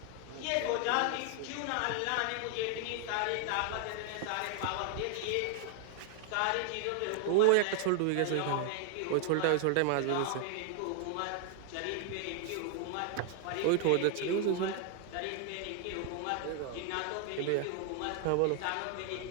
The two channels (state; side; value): different; both; correlation 0.00